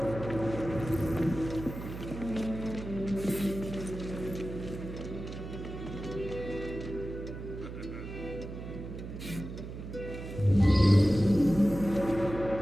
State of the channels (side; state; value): right; noise; hum, 9 dB below the sound